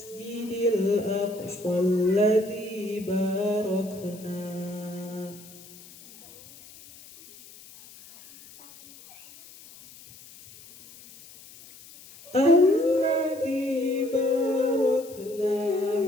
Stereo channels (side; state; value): left; noise; hiss, 20 dB below the sound